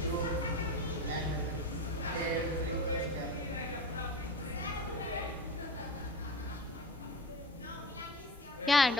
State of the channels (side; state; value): both; normal; correlation 0.30